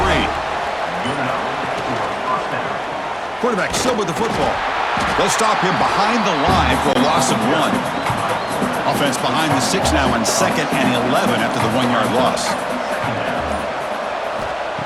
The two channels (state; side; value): identical; both; correlation 1.00